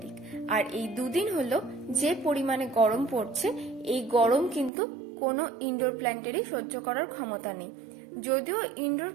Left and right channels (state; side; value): drops out; left; at 4.7 s